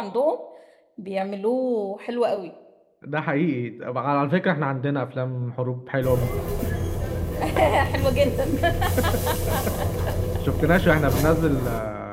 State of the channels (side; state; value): both; identical; correlation 1.00